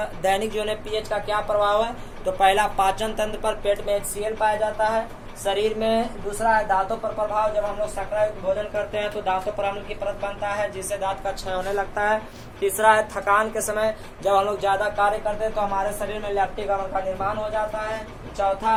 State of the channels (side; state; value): both; identical; correlation 1.00